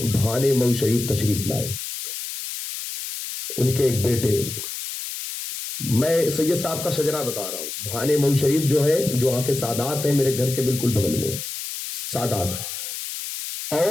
بھانے مئو شریف تشریف لائے۔ ان کے ایک بیٹے، میں سید صاحب کا شجرہ بتا رہا ہوں، بھانے مئو شریف جو ہے، جو وہاں کے سادات ہیں، میرے گھر کے بالکل بغل میں سادات،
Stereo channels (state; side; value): noise; left; hiss, 7 dB below the sound